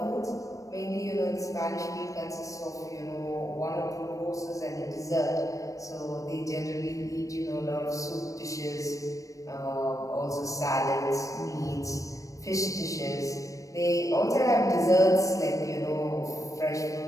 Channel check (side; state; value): right; late; 0.16 ms